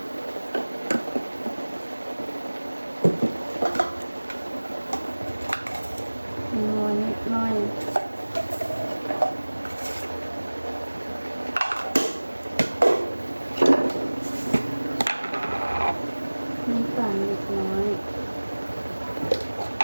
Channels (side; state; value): both; inverted; correlation -1.00